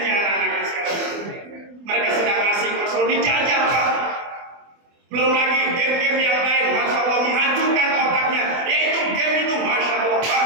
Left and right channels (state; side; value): late; left; 24 ms